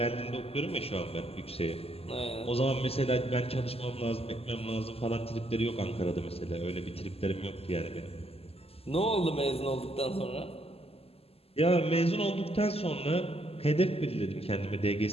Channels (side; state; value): right; late; 0.29 ms